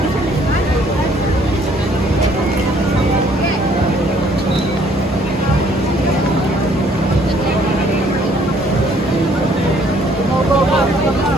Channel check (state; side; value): normal; both; correlation 0.62